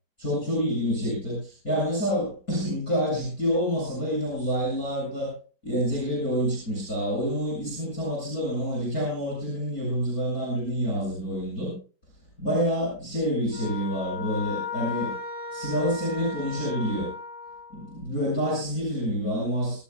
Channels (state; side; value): late; right; 4.4 ms